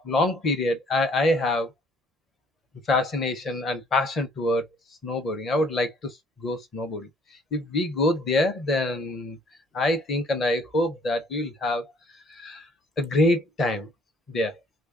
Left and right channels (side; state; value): both; normal; correlation 0.60